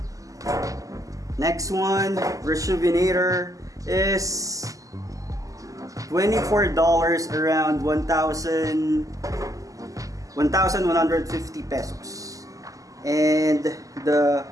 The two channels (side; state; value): left; late; 0.16 ms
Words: Next one, Rejuvenator, is $24, around 1,150 pesos. And the